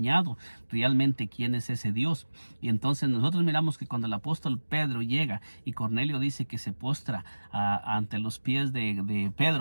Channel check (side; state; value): both; inverted; correlation -1.00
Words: realmente quién es ese Dios. Y entonces nosotros miramos que cuando el apóstol Pedro llega y Cornelio dice que se postra ante los pies de